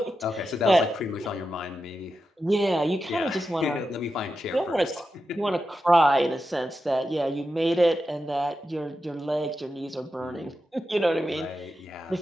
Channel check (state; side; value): normal; both; correlation 0.89